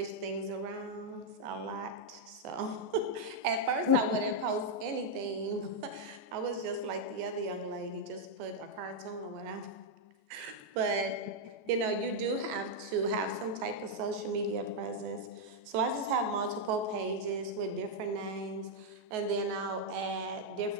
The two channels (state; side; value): late; left; 14 ms